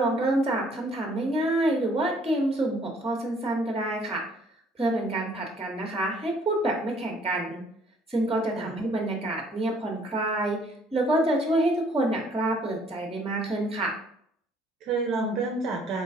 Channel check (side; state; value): both; normal; correlation 0.61